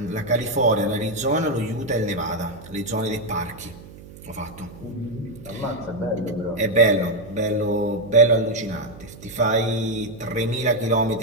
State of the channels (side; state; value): right; noise; hum, 18 dB below the sound